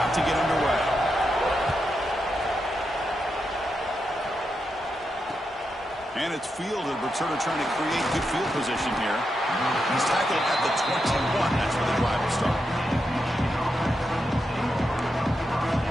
to get underway. And it's fielded. Returner trying to create good field position here. He's tackled at the 21. That's where the drive will start.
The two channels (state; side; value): normal; both; correlation 0.86